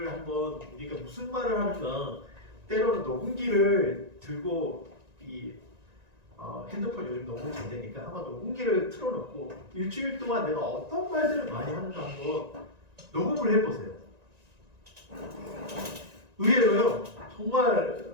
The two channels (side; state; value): left; late; 1.9 ms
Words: 한번 우리가 무슨 말을 하는가 때로는 녹음기를 들고 이 핸드폰 요즘 녹음 잘 되니까 한번 녹음기를 틀어놓고 일주일 동안 내가 어떤 말들을 많이 하는가 한번 녹음을 해보세요. 의외로요 정말